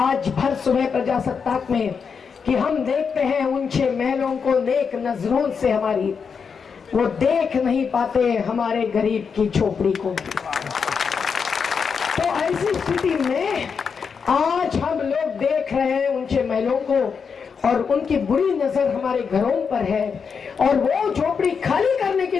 भर सुबह प्रजासत्ताक में कि हम देखते हैं ऊंचे महलों को नेक नजरों से, हमारी वो देख नहीं पाते हमारे गरीब की झोपड़ी को। तो ऐसी स्थिति में आज हम लोग देख रहे हैं ऊंचे महलों को, और उनकी बुरी नजर हमारे घरों पर है, और वो झोपड़ी खाली करने की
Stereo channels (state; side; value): quieter; right; 6.0 dB